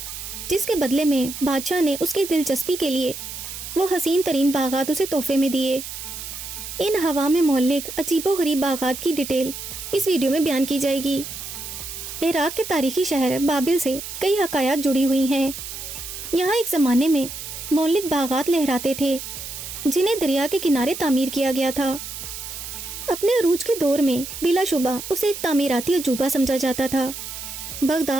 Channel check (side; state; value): right; noise; hiss, 9 dB below the sound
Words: जिसके बदले में बादशाह ने उसकी दिलचस्पी के लिए वो हसीन तरीन बागात उसे तोहफे में दिए। इन हवा में मोहल्लिक अजीबो गरीब बागात की डिटेल इस वीडियो में बयान की जाएगी। इराक के तारीखी शहर बाबिल से कई हकायात जुड़ी हुई हैं। यहाँ एक ज़माने में मोहल्लिक बागात लहराते थे, जिन्हें दरिया के किनारे तामीर किया गया था। अपने अरूज के दौर में बिलाशुबा उसे एक तामीराती अजूबा समझा जाता था।